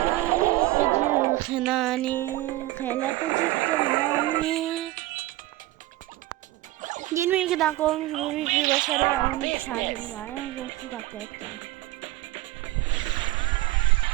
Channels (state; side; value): quieter; left; 17.8 dB